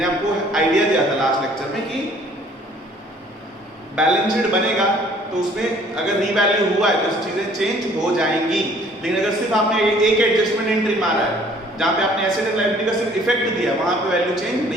आपको आइडिया दिया था लास्ट लेक्चर में कि बैलेंस शीट बनेगा तो उसमें अगर रीवैल्यू हुआ है तो चीजें चेंज हो जाएंगी। लेकिन अगर सिर्फ आपने एक एडजस्टमेंट एंट्री मारा है जहां पे आपने एसेट एंड लायबिलिटी का सिर्फ इफेक्ट दिया, वहां पे वैल्यू चेंज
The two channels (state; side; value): normal; both; correlation 0.57